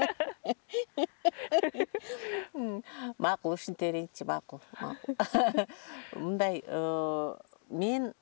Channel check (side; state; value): right; silent; 55 dB below the other